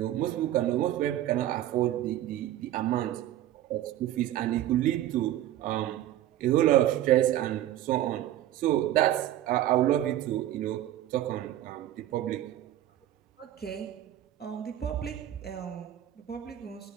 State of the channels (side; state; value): left; quieter; 13.0 dB